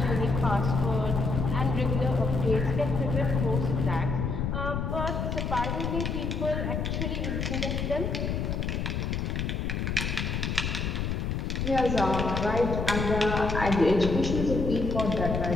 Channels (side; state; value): left; noise; rumble, 1 dB below the sound